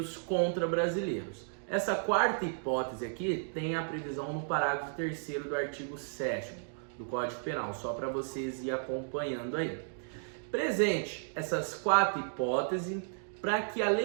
contra brasileiros. Essa quarta hipótese aqui tem a previsão no parágrafo 3º do artigo 7º do Código Penal, só para vocês ir acompanhando aí. Presente essas quatro hipóteses, para que a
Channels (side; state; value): left; silent; digital silence